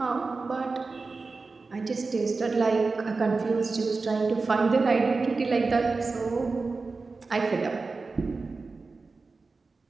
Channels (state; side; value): quieter; left; 4.0 dB